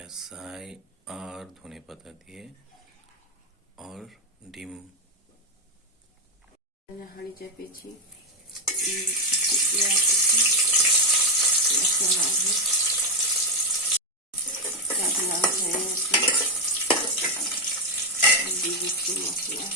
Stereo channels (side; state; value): both; normal; correlation 0.06